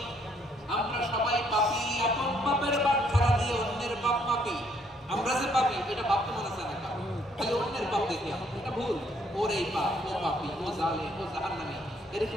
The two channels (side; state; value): both; normal; correlation 0.67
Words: আমরা সবাই পাপী। আপন পাপের বাটখারা দিয়ে অন্যের পাপ পাপী। আমরা যে পাপী এটা ভাবতে মনে চায় না, খালি অন্যের পাপ দেখি এটা ভুল। ওর এই পাপ, ও পাপী, ও জালেম, ও জাহান্নামী, এরকম